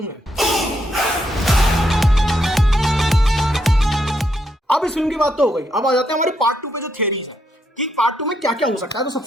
में। अब इस फिल्म की बात तो हो गई, अब आ जाते हैं हमारे पार्ट 2 पे जो थियरीज है कि पार्ट 2 में क्या क्या हो सकता है। तो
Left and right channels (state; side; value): normal; both; correlation 0.78